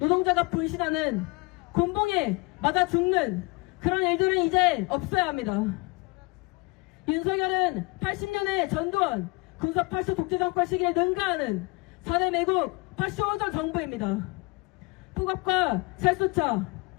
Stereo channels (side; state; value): right; quieter; 26.5 dB